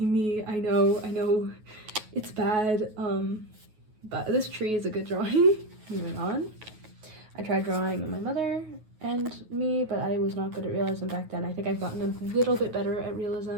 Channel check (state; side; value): late; left; 9.4 ms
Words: me. I know it's bad, but this tree is a good drawing. Moving on. I tried drawing my mother and me, but I was not good at realism back then. I think I've gotten a little bit better at